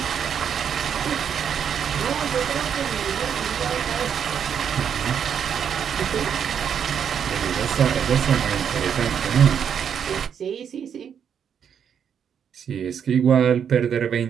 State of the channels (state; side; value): quieter; left; 8.0 dB